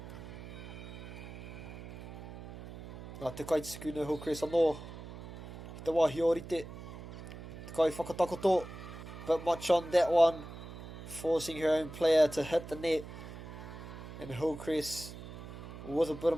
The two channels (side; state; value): right; noise; hum, 12 dB below the sound